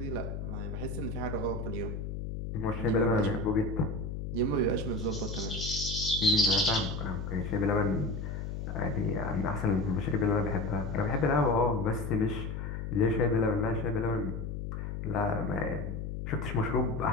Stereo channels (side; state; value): left; noise; hum, 5 dB below the sound